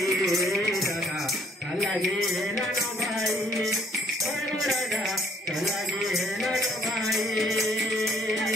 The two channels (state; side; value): normal; both; correlation 0.63